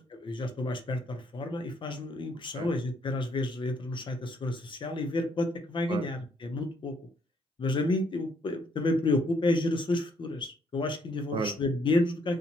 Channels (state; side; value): normal; both; correlation 0.70